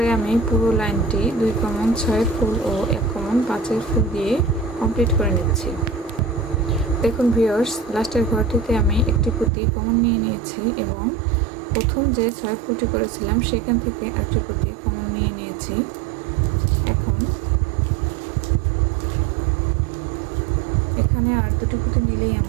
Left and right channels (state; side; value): drops out; left; at 9.5 s